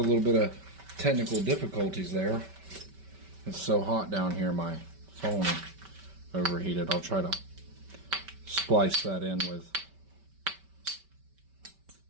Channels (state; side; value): late; left; 5.2 ms